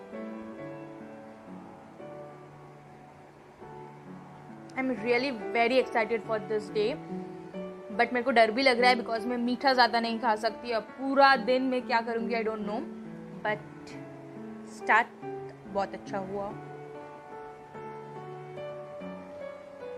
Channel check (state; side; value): identical; both; correlation 1.00